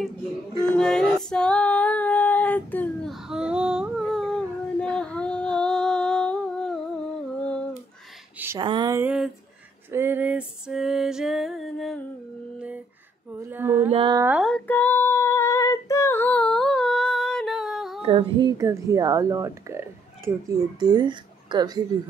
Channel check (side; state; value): both; normal; correlation 0.69